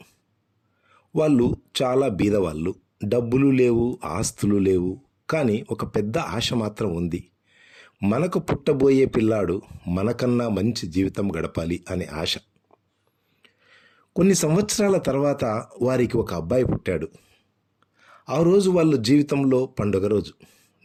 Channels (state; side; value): identical; both; correlation 1.00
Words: వాళ్ళు చాలా బీదవాళ్ళు. డబ్బులు లేవు, ఆస్తులు లేవు. కానీ ఒక పెద్ద ఆశ మాత్రం ఉంది. మనకు పుట్టబోయే పిల్లాడు మనకన్నా మంచి జీవితం గడపాలి అనే ఆశ. కొన్ని సంవత్సరాల తర్వాత వారికి ఒక అబ్బాయి పుట్టాడు. ఆ రోజు వాళ్ళ జీవితంలో పండుగ రోజు.